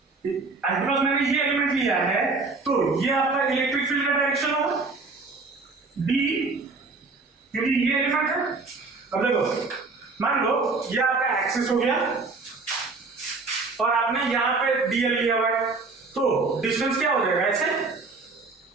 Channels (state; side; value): quieter; left; 3.9 dB